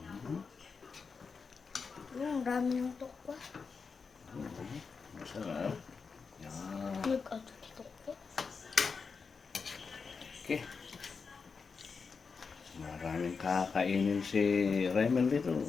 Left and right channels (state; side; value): quieter; right; 5.2 dB